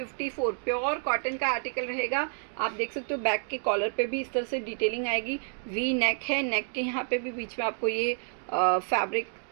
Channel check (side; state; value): left; silent; 58 dB below the other